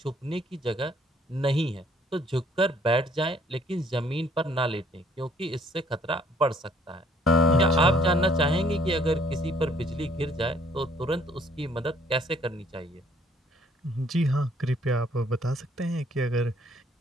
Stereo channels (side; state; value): both; normal; correlation 0.62